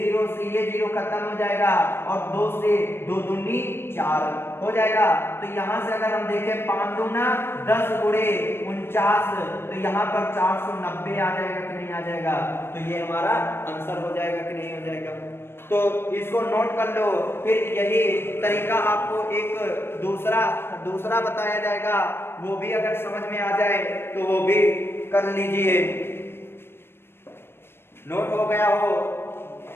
से ये 0 खत्म हो जाएगा और 2 से 2 दूनी 4 हो जाएगा। तो यहाँ से अगर हम देखें 5 दूना 10 गुणे 49, तो यहाँ पर 490 आ जाएगा कि नहीं आ जाएगा। तो ये हमारा आंसर हो जाएगा कि नहीं हो जाएगा। तो इसको नोट कर लो। फिर यही तरीका आपको एक दूसरा बताया जाएगा, वो भी अगर समझ में आ जाए तो वो भी कर लीजिए। नोट हो गया हो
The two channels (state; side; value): late; right; 0.11 ms